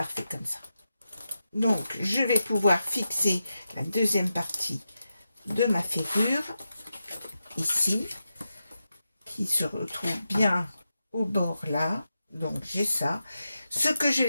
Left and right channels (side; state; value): both; inverted; correlation -0.89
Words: comme ça. Donc, je vais pouvoir fixer la deuxième partie de ma ferrure, ici, qui se retrouve bien au bord là. Donc, j'ai ça. Ce que je